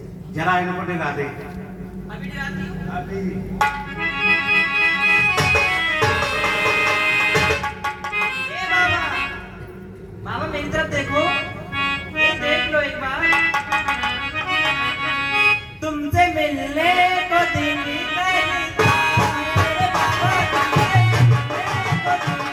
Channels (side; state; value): both; identical; correlation 1.00